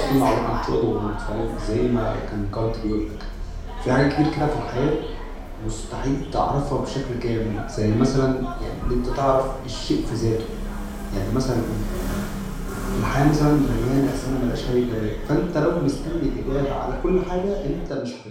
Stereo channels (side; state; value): both; identical; correlation 1.00